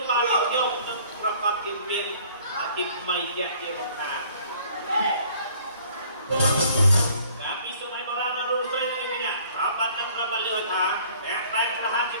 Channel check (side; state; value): both; inverted; correlation -0.55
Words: បានខ្ញុំនឹងប្រកបជាមានអាទិថ្មីជាបង្ការតាមពីសម័យបុរាណនៅស្រីនេះប្រាប់បាត់នឹងប្រាប់លឿនថាតែខ្លែងក្លាហានជា